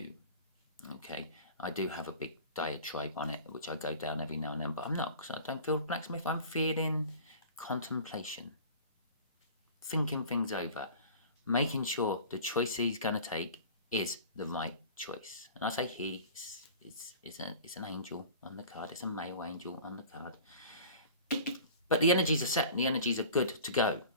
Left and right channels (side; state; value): both; inverted; correlation -0.41